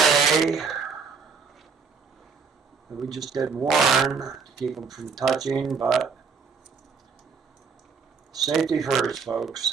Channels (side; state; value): left; quieter; 5.5 dB